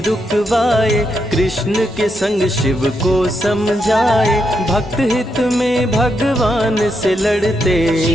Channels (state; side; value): normal; both; correlation 0.81